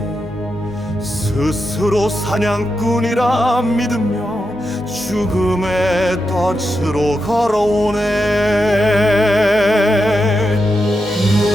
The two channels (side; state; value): both; normal; correlation 0.87